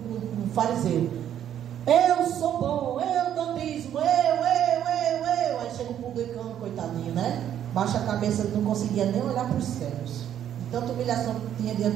fariseu: eu sou bom, eu dou dízimo, eu. Aí chega o publicano, coitadinho, né? Baixa a cabeça, ele não conseguia nem olhar para os céus. Tanta humilhação que tinha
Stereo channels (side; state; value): left; quieter; 10.3 dB